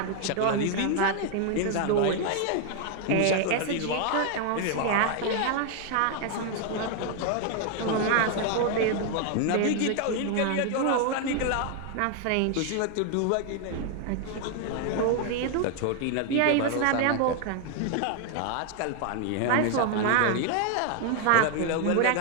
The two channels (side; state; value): both; different; correlation 0.00